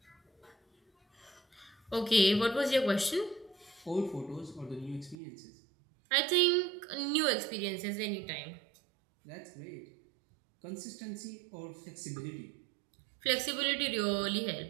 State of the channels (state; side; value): drops out; left; at 5.2 s